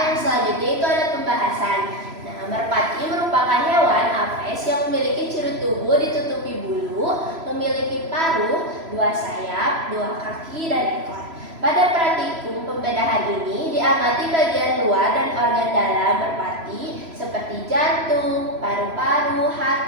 yang selanjutnya itu ada pembahasan. Nah, merpati merupakan hewan aves yang memiliki ciri tubuh ditutupi bulu, memiliki paruh, 2 sayap, 2 kaki, dan ekor. Pada praktikum pembedahan ini diamati bagian luar dan organ dalam merpati seperti jantung, paru-paru,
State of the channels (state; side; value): late; left; 3.0 ms